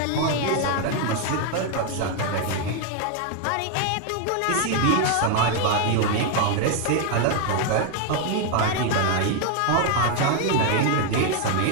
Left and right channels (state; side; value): different; both; correlation 0.00